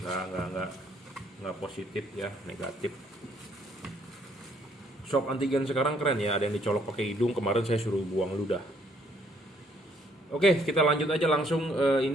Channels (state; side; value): normal; both; correlation 0.66